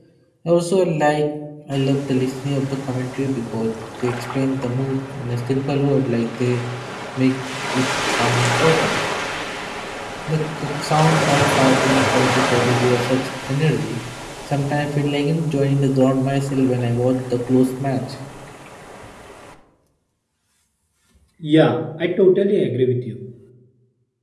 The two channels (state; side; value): identical; both; correlation 1.00